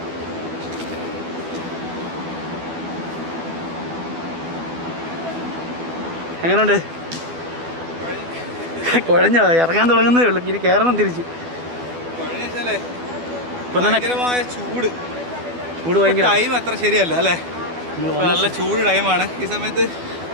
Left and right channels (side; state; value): left; late; 12 ms